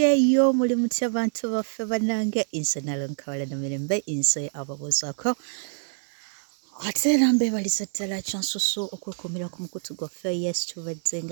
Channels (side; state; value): left; silent; 61 dB below the other